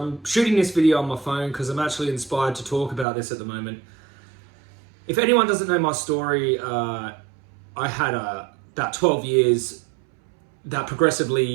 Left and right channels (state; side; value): drops out; left; at 3.1 s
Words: shooting this video on my phone because I'm actually inspired to talk about this at the moment. If anyone doesn't know my story, I had about 12 years that